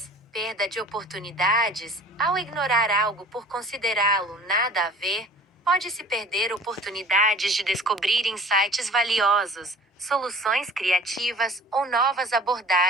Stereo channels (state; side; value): normal; both; correlation 0.46